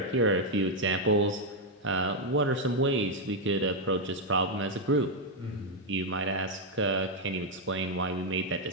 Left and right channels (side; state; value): both; normal; correlation 0.01